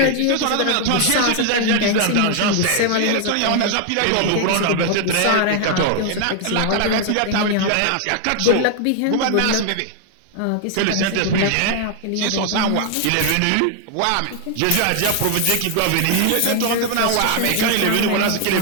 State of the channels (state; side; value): different; both; correlation 0.00